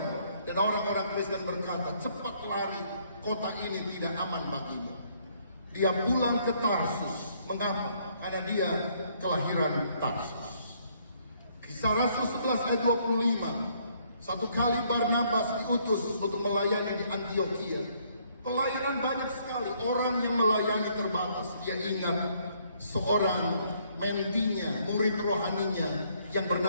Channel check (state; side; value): inverted; both; correlation -0.67